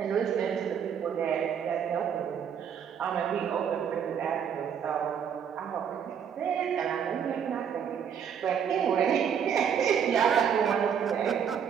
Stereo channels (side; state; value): left; quieter; 7.8 dB